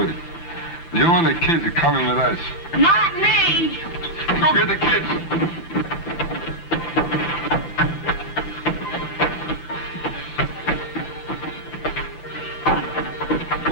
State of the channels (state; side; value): late; right; 13 ms